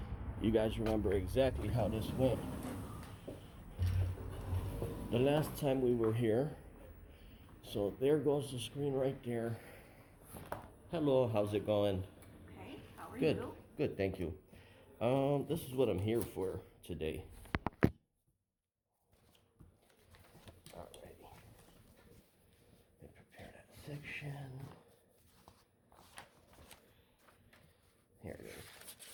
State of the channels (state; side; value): identical; both; correlation 1.00